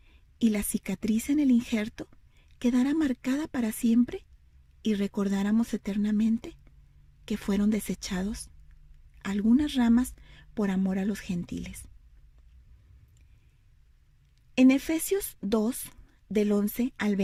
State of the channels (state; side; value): identical; both; correlation 1.00